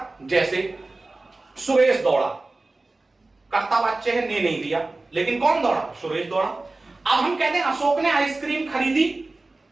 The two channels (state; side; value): quieter; left; 3.2 dB